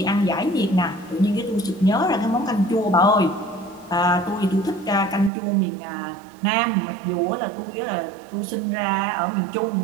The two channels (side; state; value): left; drops out; at 5.3 s